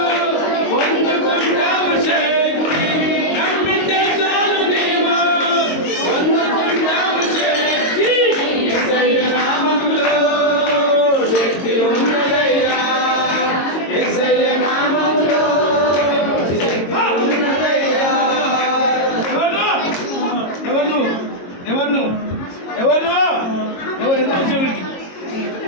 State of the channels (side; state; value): right; late; 22 ms